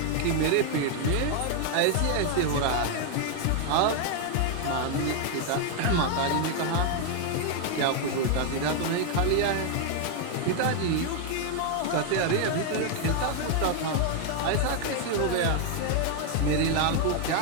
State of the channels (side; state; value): both; different; correlation 0.00